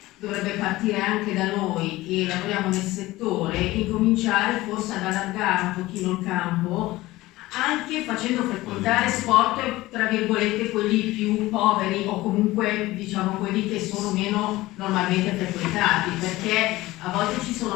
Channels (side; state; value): right; quieter; 18.3 dB